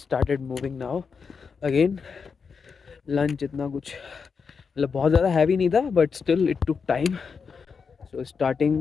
moving now again. Lunch इतना कुछ मतलब बहुत ज़्यादा हैवी नहीं था, but still it took time. So starting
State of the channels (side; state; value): right; quieter; 5.6 dB